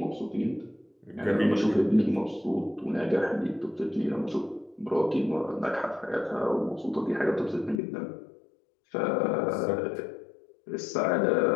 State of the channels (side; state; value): right; drops out; at 7.8 s